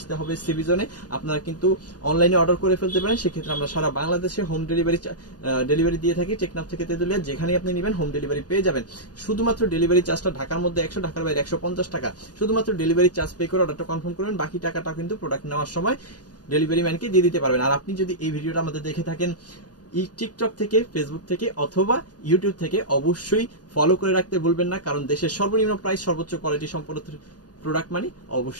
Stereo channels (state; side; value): late; right; 0.69 ms